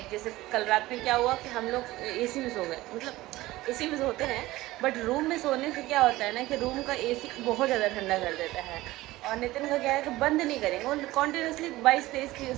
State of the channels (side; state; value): left; quieter; 17.9 dB